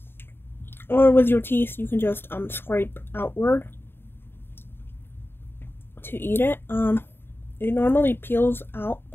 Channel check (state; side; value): late; right; 0.11 ms